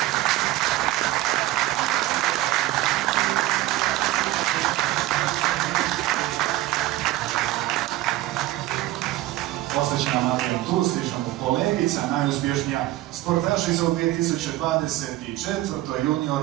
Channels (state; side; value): quieter; left; 16.0 dB